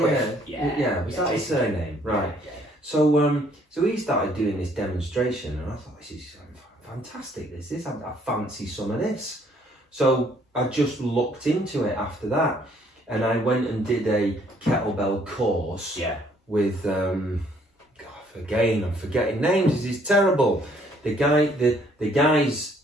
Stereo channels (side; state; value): both; normal; correlation 0.64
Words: Was that his surname? Right. Yeah. So he started doing this demonstration, and I thought, this is fantastic. I fancy some of this. So I just looked into it after that, and I went and did a kettlebell course. Yeah. With again, I'm forgetting names. This is terrible. The guy's